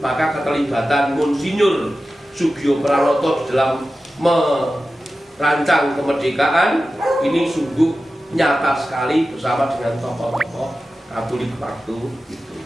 Maka keterlibatan Monsinyur Sugio Pranoto di dalam merancang kemerdekaan ini sungguh nyata sekali bersama dengan tokoh-tokoh Katolik waktu itu.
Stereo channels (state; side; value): normal; both; correlation 0.94